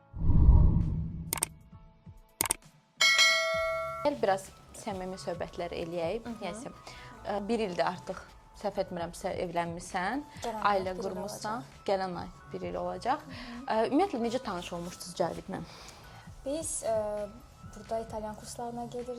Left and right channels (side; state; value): both; identical; correlation 1.00